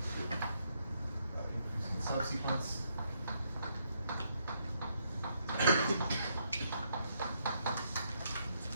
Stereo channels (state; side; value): inverted; both; correlation -0.76